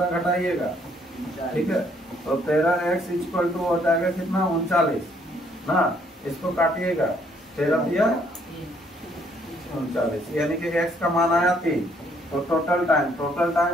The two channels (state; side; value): normal; both; correlation 0.67